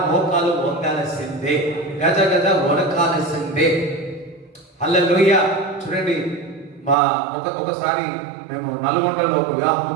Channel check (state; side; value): drops out; left; at 7.0 s